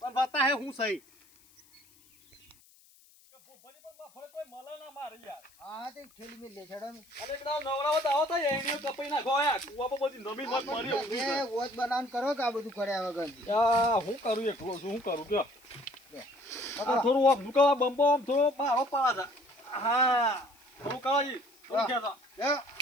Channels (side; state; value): left; noise; hiss, 28 dB below the sound